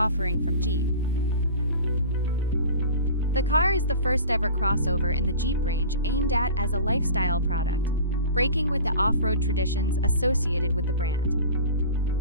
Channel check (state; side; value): inverted; both; correlation -0.39